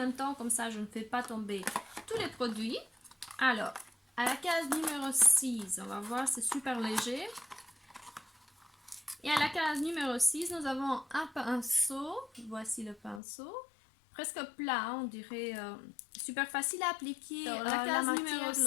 temps. Comme ça je ne fais pas tomber tous les produits. Alors, à la case numéro 6, on va voir, c'est super léger. Et à la case numéro 6, nous avons un pinceau. Voici le pinceau. Presque plat, on dirait. Super facile à appliquer. Alors, la case numéro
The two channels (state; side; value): drops out; right; at 13.2 s